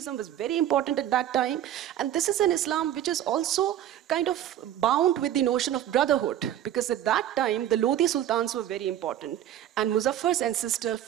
was very important at that time. And this is an Islam which is also kind of bound with the notion of brotherhood, because at that time, the Lodi Sultans were very important. And Muzaffar's ancestor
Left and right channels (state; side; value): quieter; left; 11.5 dB